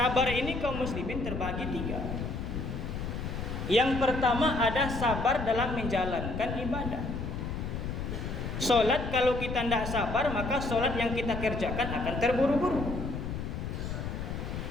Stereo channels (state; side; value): noise; left; rumble, 4 dB below the sound